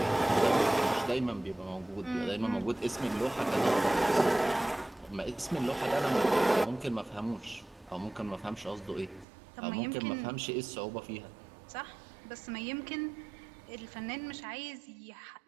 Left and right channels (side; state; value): left; drops out; at 9.2 s